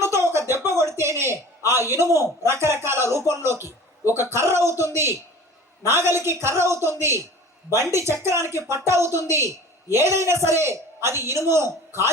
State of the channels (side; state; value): both; normal; correlation 0.42